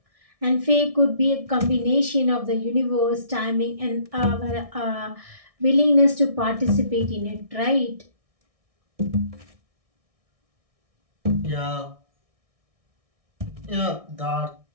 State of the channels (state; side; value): late; left; 1.6 ms